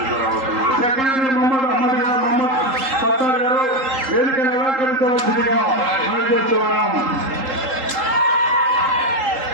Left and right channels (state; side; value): late; left; 3.8 ms